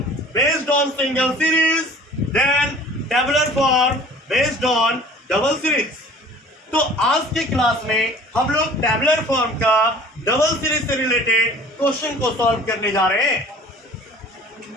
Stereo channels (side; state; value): both; normal; correlation 0.47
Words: based on single series, then tabular form based on double series. तो आज के क्लास में हम लोग टेबुलर फॉर्म का डबल सीरीज से रिलेटेड क्वेश्चन को सॉल्व करने जा रहे हैं